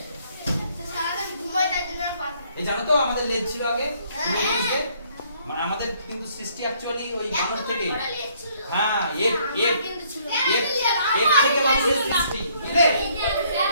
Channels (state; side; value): inverted; both; correlation -0.65